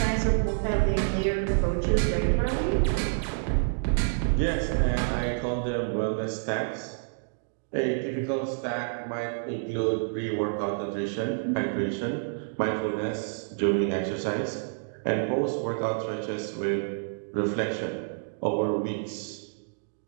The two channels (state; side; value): silent; left; digital silence